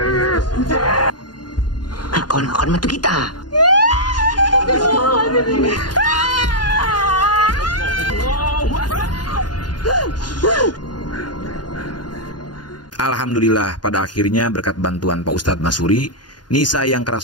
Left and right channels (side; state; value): right; late; 0.70 ms